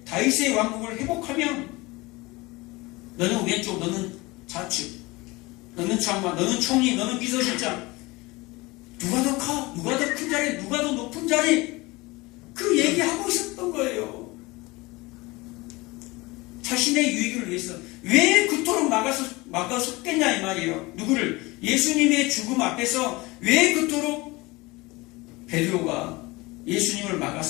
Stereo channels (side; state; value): right; quieter; 22.7 dB